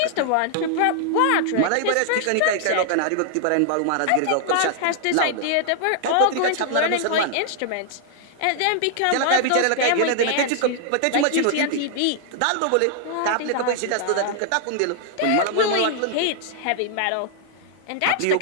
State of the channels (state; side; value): different; both; correlation 0.00